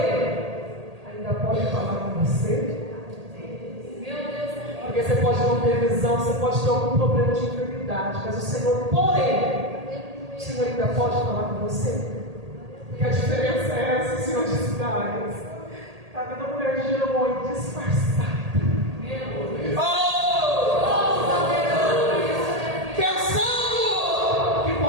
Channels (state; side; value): late; left; 1.8 ms